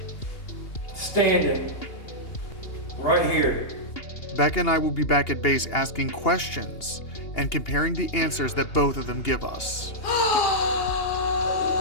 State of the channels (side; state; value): right; late; 2.8 ms